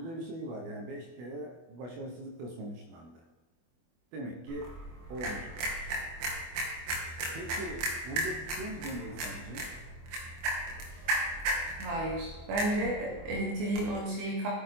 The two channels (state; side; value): late; left; 24 ms